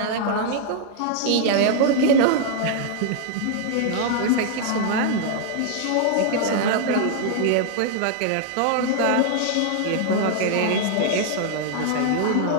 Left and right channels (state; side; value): different; both; correlation 0.00